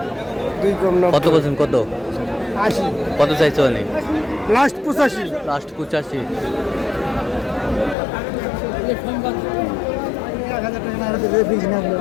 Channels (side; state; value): right; drops out; at 8.0 s